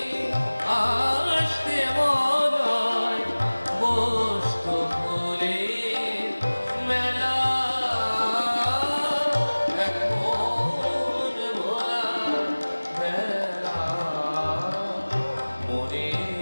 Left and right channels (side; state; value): both; inverted; correlation -1.00